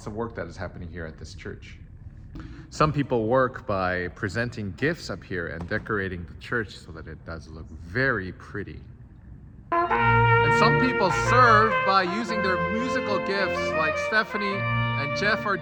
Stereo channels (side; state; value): both; identical; correlation 1.00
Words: of work that is happening here at this church. Some people work by presenting gifts up here and decorating the church so that it does look very pretty. And some people serve by using their musical gifts like Stephanie and Jeff are